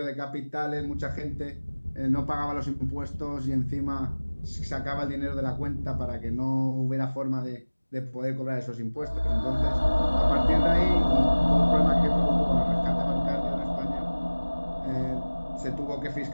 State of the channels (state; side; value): inverted; both; correlation -1.00